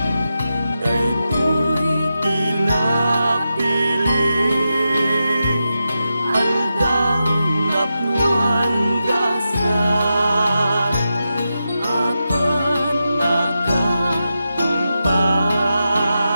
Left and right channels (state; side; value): inverted; both; correlation -0.89